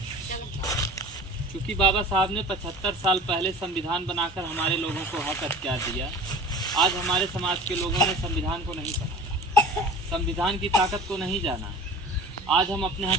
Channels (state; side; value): normal; both; correlation 0.40